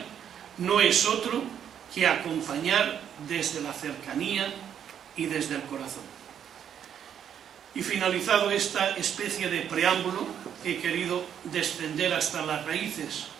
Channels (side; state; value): left; quieter; 8.9 dB